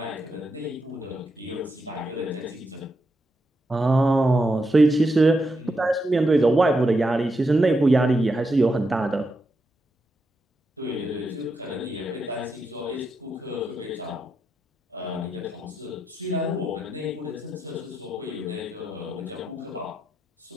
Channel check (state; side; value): normal; both; correlation 0.84